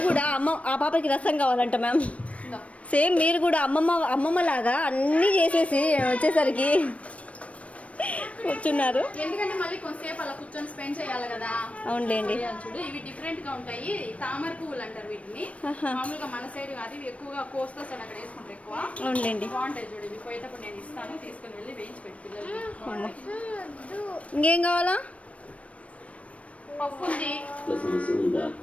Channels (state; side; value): late; right; 0.064 ms